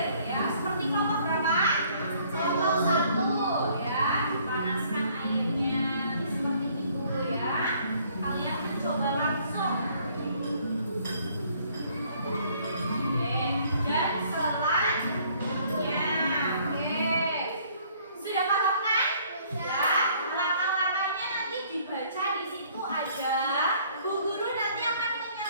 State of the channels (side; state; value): both; inverted; correlation -0.61